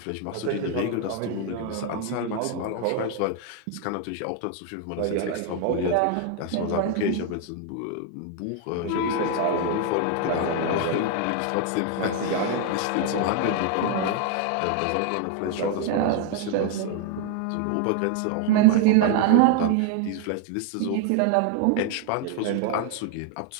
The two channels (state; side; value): different; both; correlation 0.00